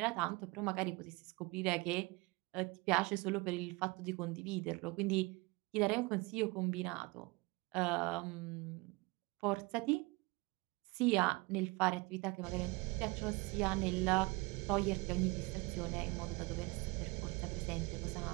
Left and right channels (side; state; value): left; quieter; 24.8 dB